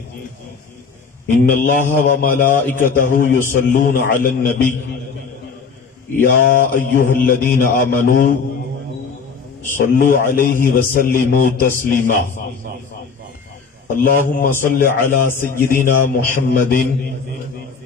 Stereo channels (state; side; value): quieter; right; 5.4 dB